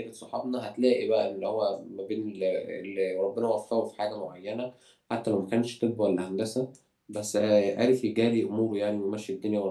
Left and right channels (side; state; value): both; identical; correlation 1.00